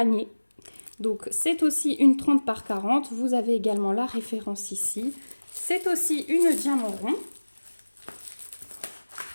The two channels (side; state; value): both; inverted; correlation -1.00